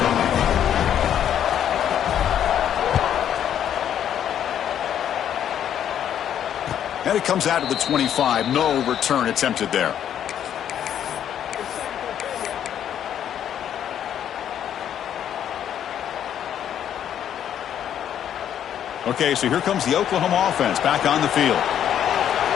And it comes out to the 25. No return attempted there. Okay, so here comes the Oklahoma offense back on the field.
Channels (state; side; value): quieter; right; 9.9 dB